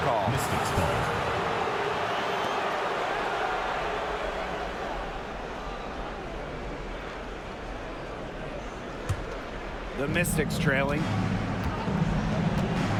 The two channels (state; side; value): identical; both; correlation 1.00